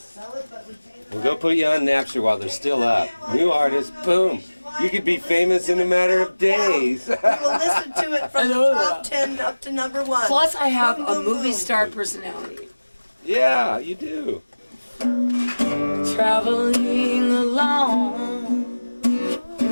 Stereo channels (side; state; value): both; inverted; correlation -1.00